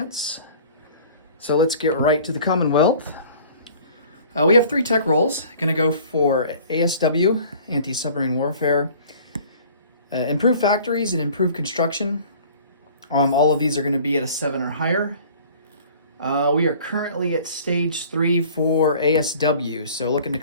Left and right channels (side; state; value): both; inverted; correlation -0.48